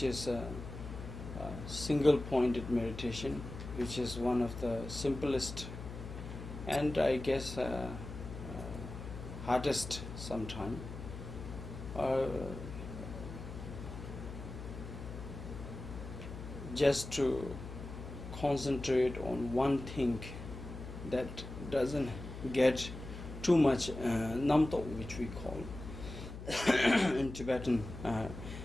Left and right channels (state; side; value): noise; left; hum, 10 dB below the sound